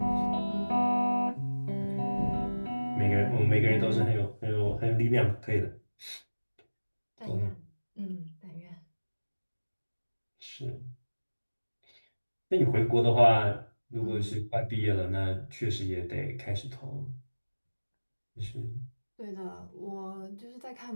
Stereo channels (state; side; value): inverted; both; correlation -1.00